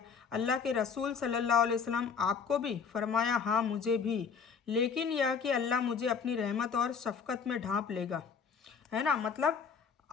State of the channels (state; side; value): quieter; right; 6.1 dB